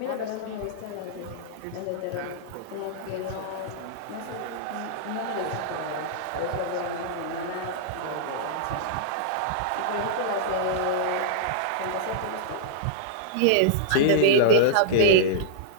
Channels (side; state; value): both; different; correlation -0.02